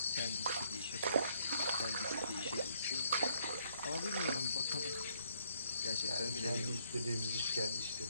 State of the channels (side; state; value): both; inverted; correlation -0.69